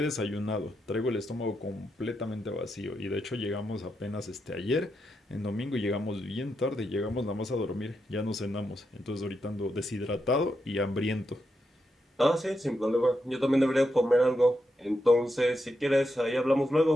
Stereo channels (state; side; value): normal; both; correlation 0.84